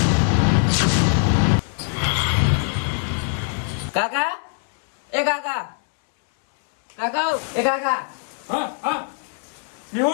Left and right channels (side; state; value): right; silent; 58 dB below the other